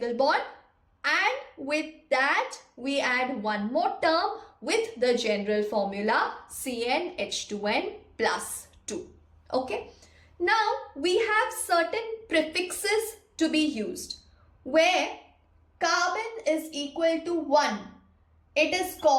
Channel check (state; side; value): identical; both; correlation 1.00